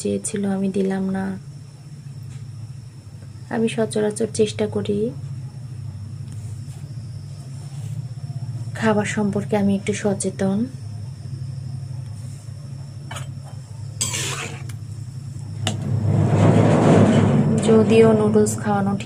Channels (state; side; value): identical; both; correlation 1.00